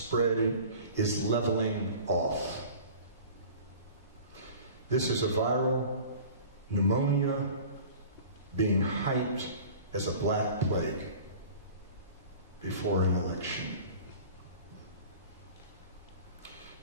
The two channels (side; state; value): both; inverted; correlation -0.42